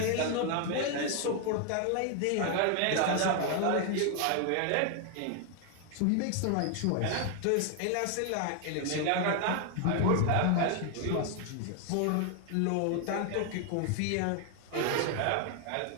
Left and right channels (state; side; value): different; both; correlation 0.00